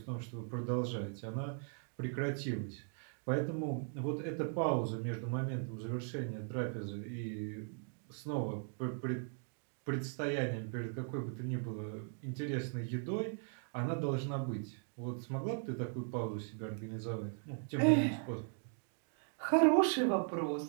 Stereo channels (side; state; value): left; silent; 52 dB below the other